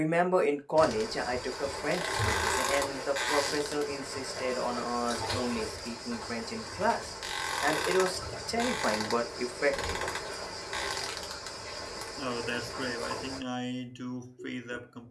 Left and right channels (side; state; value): both; identical; correlation 1.00